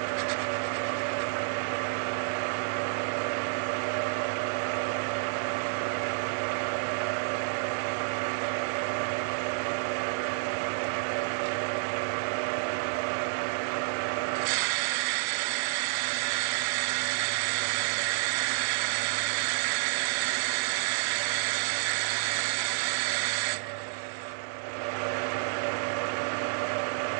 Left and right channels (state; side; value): silent; left; digital silence